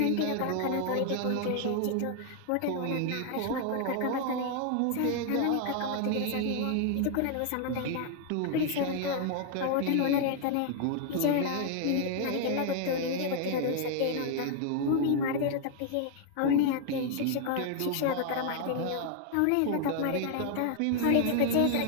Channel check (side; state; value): both; different; correlation 0.00